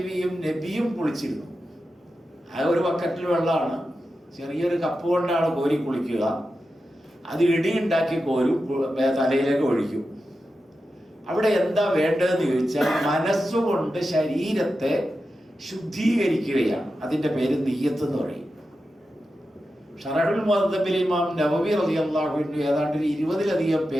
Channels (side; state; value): both; normal; correlation 0.91